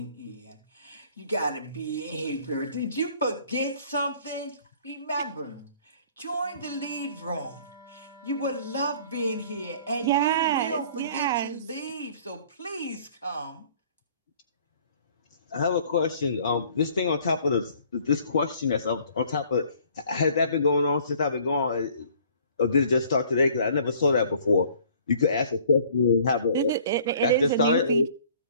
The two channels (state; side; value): inverted; both; correlation -0.55